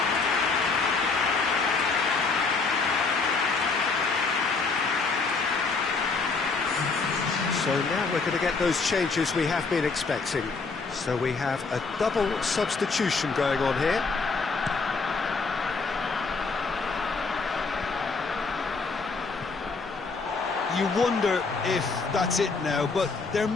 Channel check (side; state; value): right; quieter; 4.3 dB